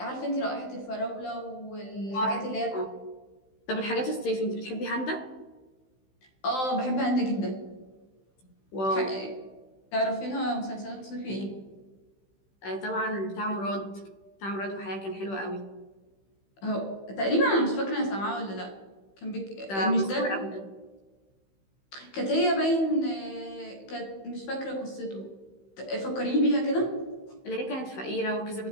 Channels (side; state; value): right; late; 15 ms